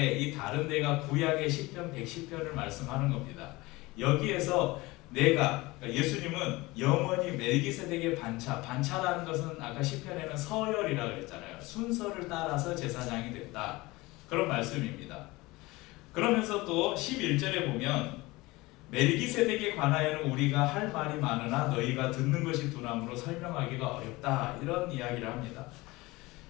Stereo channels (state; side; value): quieter; right; 21.4 dB